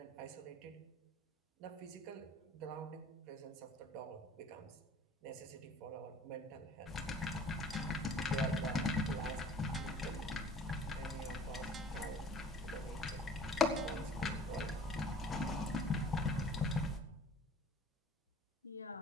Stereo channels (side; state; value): both; normal; correlation 0.50